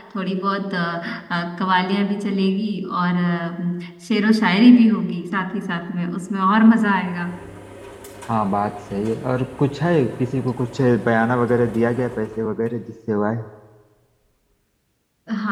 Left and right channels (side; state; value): both; identical; correlation 1.00